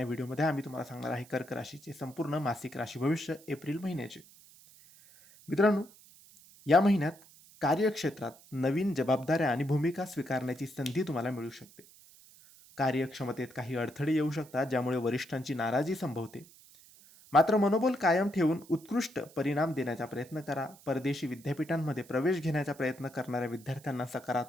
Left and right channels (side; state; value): right; noise; hiss, 24 dB below the sound